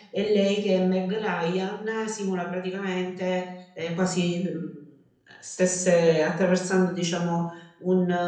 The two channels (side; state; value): both; identical; correlation 1.00